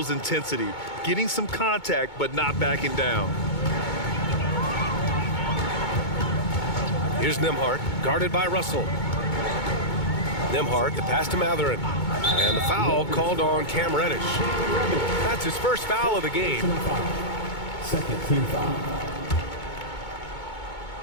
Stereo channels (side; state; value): right; late; 2.2 ms